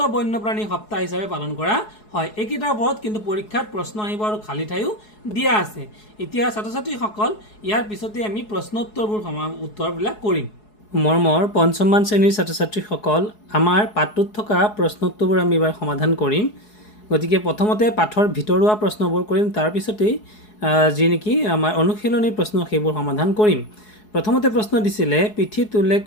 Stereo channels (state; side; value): late; right; 4.7 ms